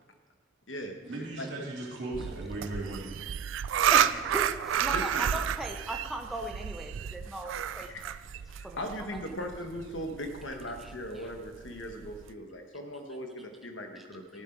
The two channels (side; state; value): left; quieter; 6.1 dB